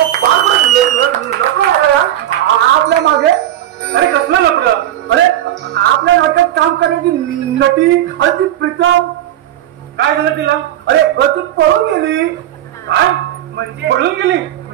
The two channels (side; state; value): left; quieter; 12.5 dB